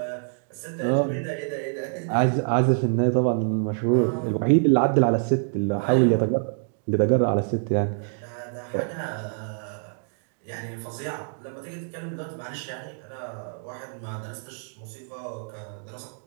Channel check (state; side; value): silent; left; digital silence